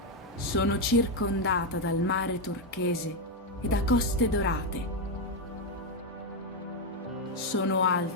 Sono circondata dal mare turchese e da coste dorate. Sono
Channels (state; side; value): normal; both; correlation 0.04